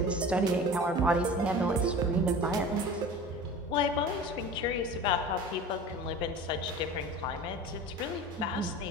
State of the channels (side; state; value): both; normal; correlation 0.36